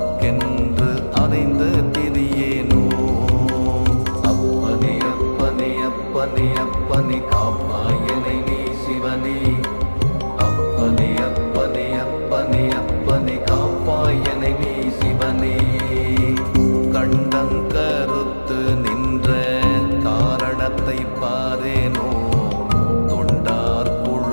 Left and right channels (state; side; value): inverted; both; correlation -1.00